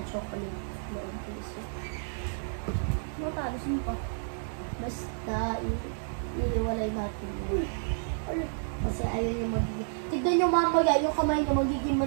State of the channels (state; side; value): silent; left; digital silence